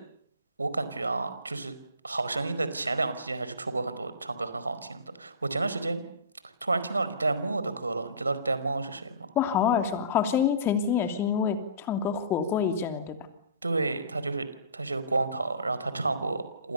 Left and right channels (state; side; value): inverted; both; correlation -0.40